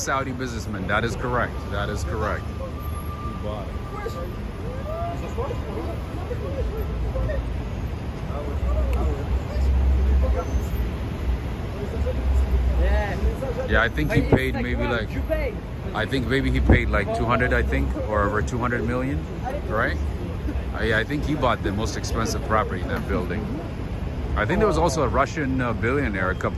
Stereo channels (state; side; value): identical; both; correlation 1.00